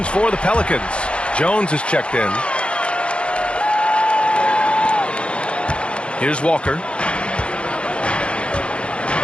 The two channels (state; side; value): late; right; 0.058 ms